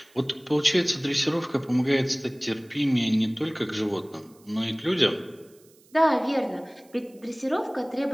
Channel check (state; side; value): noise; right; hiss, 29 dB below the sound